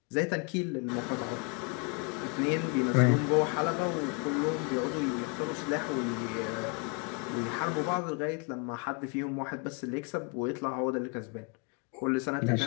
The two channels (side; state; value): right; quieter; 34.7 dB